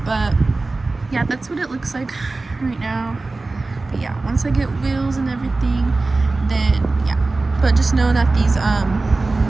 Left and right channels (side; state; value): left; quieter; 3.4 dB